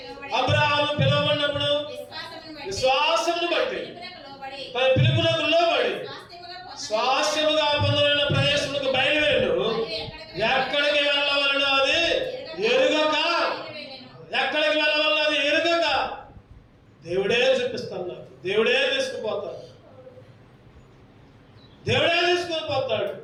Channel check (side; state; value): both; identical; correlation 1.00